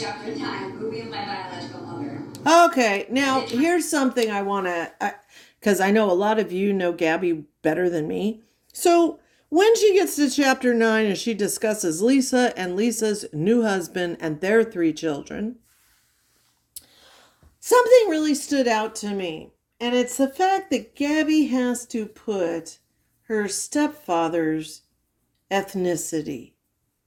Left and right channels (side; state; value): both; identical; correlation 1.00